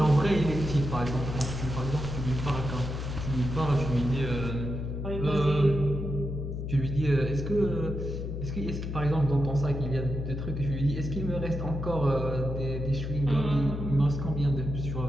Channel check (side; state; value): left; noise; hum, 4 dB below the sound